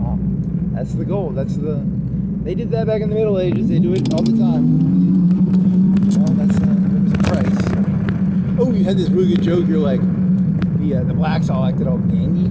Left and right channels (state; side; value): identical; both; correlation 1.00